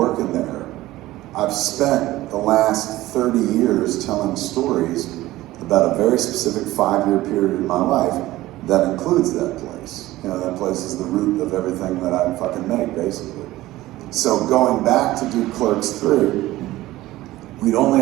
there, I've spent the last 30 years telling stories about a very specific 5-year period in my life that includes that place. You know, that place is the root of everything that I fucking make, basically. So going back to do Clerks 3, we'd only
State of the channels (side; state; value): left; quieter; 16.8 dB